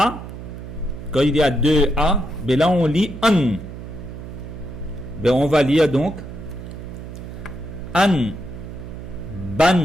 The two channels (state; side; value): noise; right; hum, 11 dB below the sound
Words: ben là on lit an. Ben on va lire donc an,